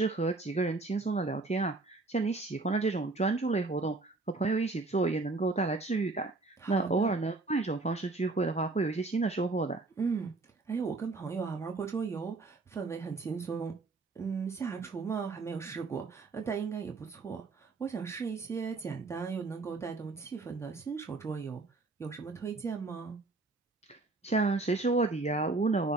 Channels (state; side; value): quieter; left; 3.5 dB